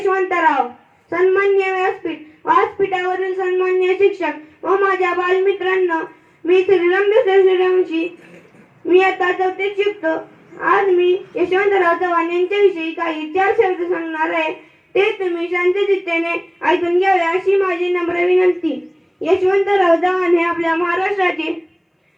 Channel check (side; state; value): both; identical; correlation 1.00